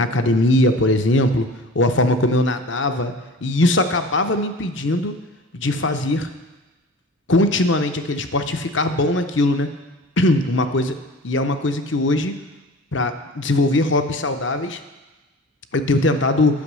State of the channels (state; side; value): normal; both; correlation 0.40